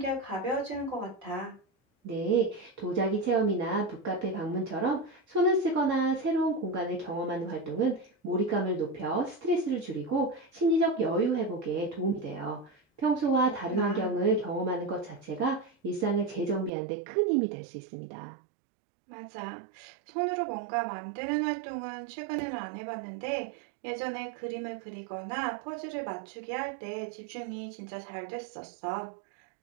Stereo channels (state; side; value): drops out; left; at 16.7 s